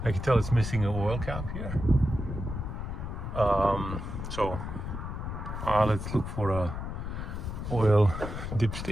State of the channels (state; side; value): noise; left; rumble, 5 dB below the sound